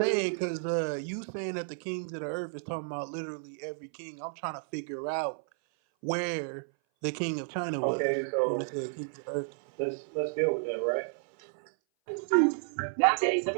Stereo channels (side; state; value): left; silent; 57 dB below the other